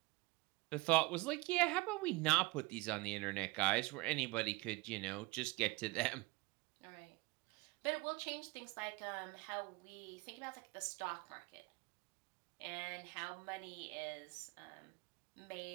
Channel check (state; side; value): quieter; left; 22.9 dB